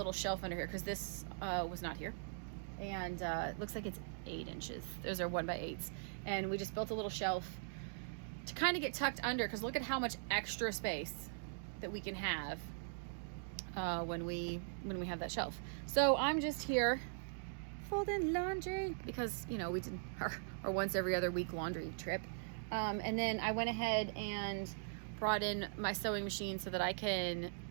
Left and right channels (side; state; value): left; silent; digital silence